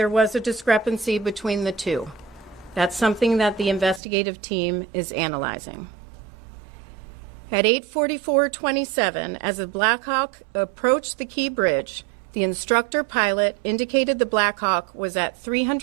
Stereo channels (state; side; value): drops out; left; at 4.0 s